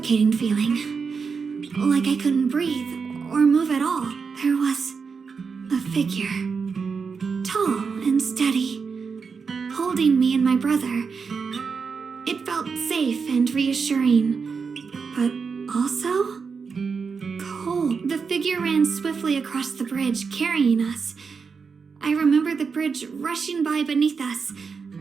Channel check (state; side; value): quieter; left; 5.4 dB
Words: feeling. Like I couldn't breathe or move at all. There was a figure. Tall and steady. Holding me and my brother. It felt safe and reassuring. but also cold. The figure ran swiftly across the bridge, carrying us. I remember the bridge rushing by beneath us,